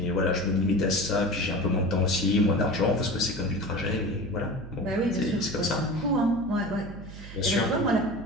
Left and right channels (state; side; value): noise; right; hum, 14 dB below the sound